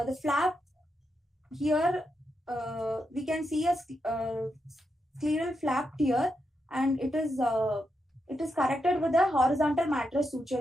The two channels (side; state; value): both; normal; correlation 0.84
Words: flap here, we can see a scleral flap tear, and it is corrected with a horizontal mattress suture